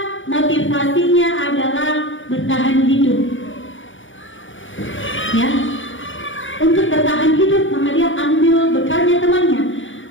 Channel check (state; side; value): late; right; 0.56 ms